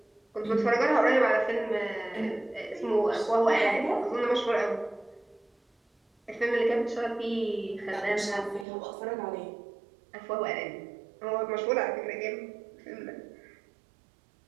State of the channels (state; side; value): drops out; left; at 8.7 s